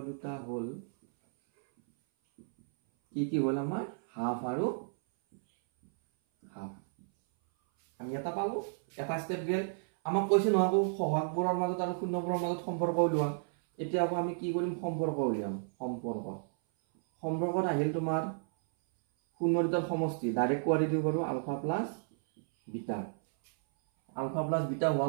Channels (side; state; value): left; silent; 56 dB below the other